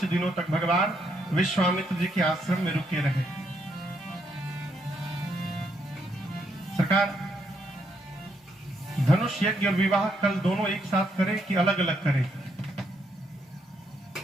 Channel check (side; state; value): both; normal; correlation 0.75